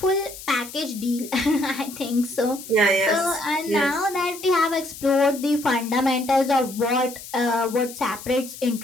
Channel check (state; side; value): noise; left; hiss, 14 dB below the sound